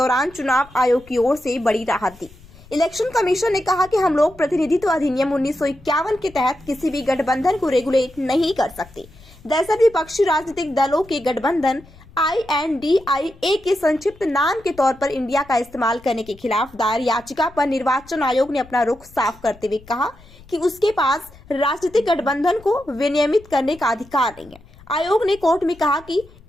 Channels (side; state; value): left; noise; rumble, 24 dB below the sound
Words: चुनाव आयोग की ओर से बड़ी राहत दी। इलेक्शन कमीशन ने कहा कि हम लोग प्रतिनिधित्व अधिनियम 1951 के तहत किसी भी गठबंधन को रेगुलेट नहीं कर सकते। दरअसल विपक्षी राजनीतिक दलों के गठबंधन INDIA के संक्षिप्त नाम के तौर पर इंडिया का इस्तेमाल करने के खिलाफ दायर याचिका पर निर्वाचन आयोग ने अपना रुख साफ करते हुए कहा कि उसके पास राजनीतिक गठबंधन को विनियमित करने का अधिकार नहीं है। आयोग ने कोर्ट में कहा कि